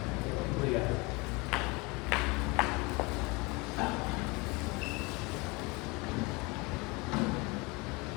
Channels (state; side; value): quieter; right; 26.4 dB